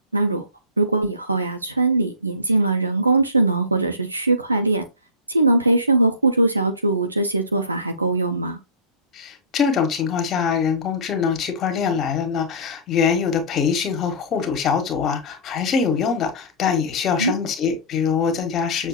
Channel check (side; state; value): both; inverted; correlation -0.31